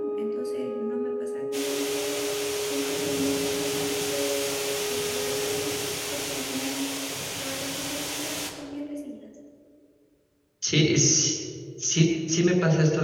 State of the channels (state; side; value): identical; both; correlation 1.00